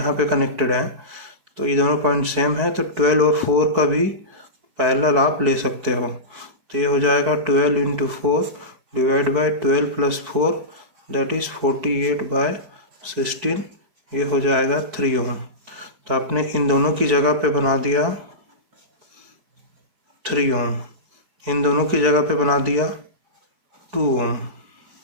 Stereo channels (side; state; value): left; late; 4.6 ms